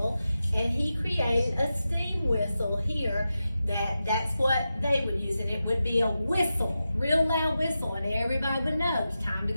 and he created a steam whistle here that's what they would use. And it would be a whistle, real loud whistle, and everybody would know it's time to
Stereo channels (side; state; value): both; inverted; correlation -0.91